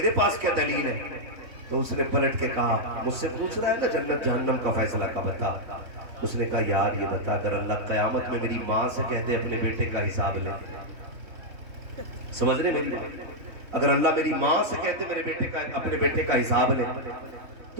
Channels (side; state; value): left; late; 3.5 ms